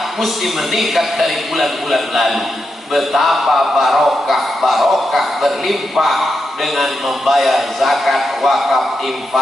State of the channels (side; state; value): both; normal; correlation 0.86